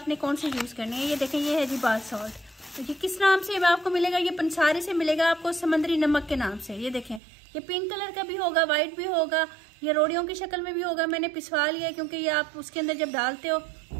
कौन सी यूज़ करनी है। ये देखें, ये है जी बाथ सॉल्ट। तो ये किस नाम से आपको मिलेगा? ये पंसारी से मिलेगा आपको, समंदरी नमक के नाम से। ये देखें, ये पिंक कलर का भी होगा, व्हाइट भी होगा, ये रोड़ियों की शक्ल में भी होगा। मैंने पिसवा लिया है क्योंकि ये आप उसके अंदर जब डालते हो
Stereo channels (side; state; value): left; drops out; at 7.2 s